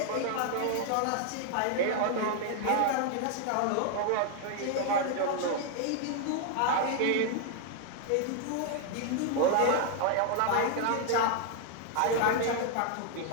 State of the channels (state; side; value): different; both; correlation 0.00